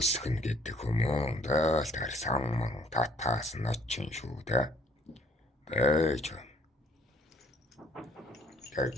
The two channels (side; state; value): both; normal; correlation 0.61